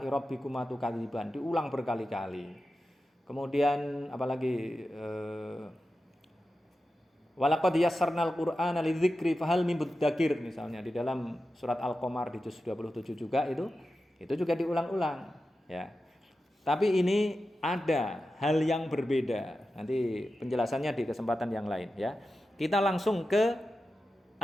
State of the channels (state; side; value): normal; both; correlation 0.92